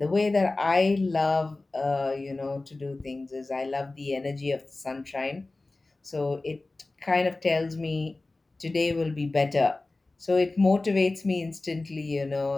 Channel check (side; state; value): right; quieter; 3.2 dB